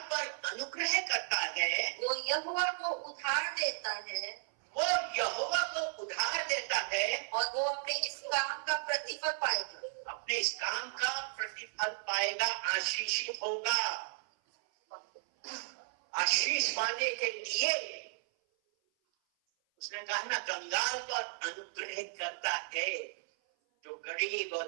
पर अनुग्रह करता है, वो यहोवा को उधार देता है, वो यहोवा को उधार देता है, और वो अपने इस काम का प्रतिफल पाएगा। अपने इस काम का प्रतिफल पाएगा, आशीषित होगा। आशीष पाने के लिए उसने कहा ना, कंगाल पर अनुग्रह करता है। जो गरीब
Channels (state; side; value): silent; left; 55 dB below the other